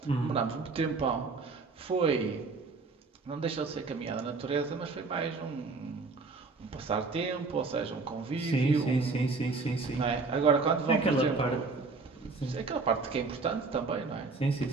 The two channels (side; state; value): left; quieter; 4.1 dB